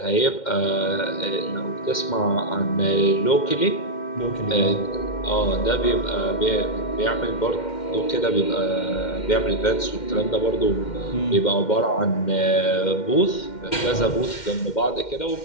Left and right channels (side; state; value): right; late; 2.1 ms